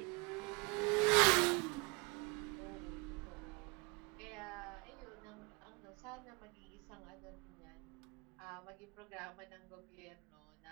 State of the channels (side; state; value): left; quieter; 28.5 dB